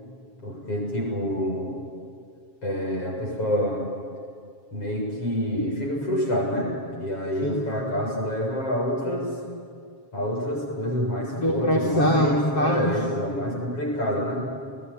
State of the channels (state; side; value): late; right; 7.4 ms